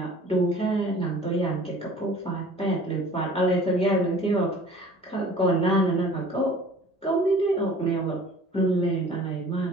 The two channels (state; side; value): normal; both; correlation 0.48